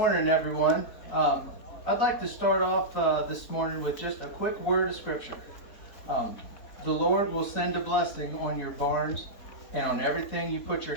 everyone. I'd like to start off this morning with just a quick word of scripture. The Lord will send a blessing on your barns and on everything you put your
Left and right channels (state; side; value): late; right; 4.0 ms